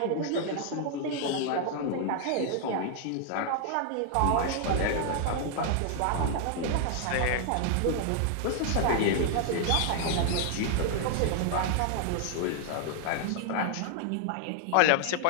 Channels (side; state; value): both; different; correlation 0.00